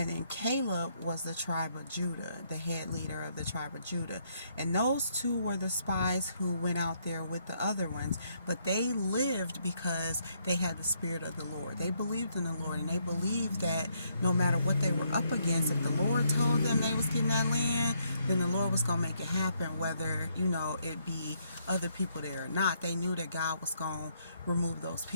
then Caleb was the tribe of Judah, the head leader of the tribe of Judah. And those two were the spies who went out there with the other ones, but they lived because they had the spirit of the Lord. They believed in the Lord, and they believed that no matter what they were up against, if the Lord told them they was getting that land, then the Lord was going to make it happen, whether, it be other people there or not. They knew that God was going to remove those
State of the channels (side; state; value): both; inverted; correlation -0.73